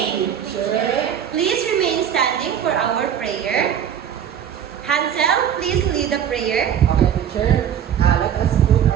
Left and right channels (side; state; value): left; quieter; 9.0 dB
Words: teacher. Please remain standing for our prayer. Hansel, please lead the prayer. Okay, teacher. Let us put